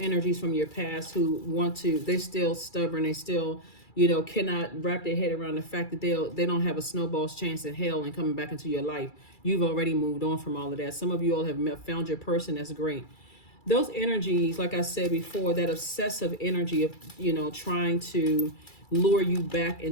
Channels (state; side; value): late; right; 2.3 ms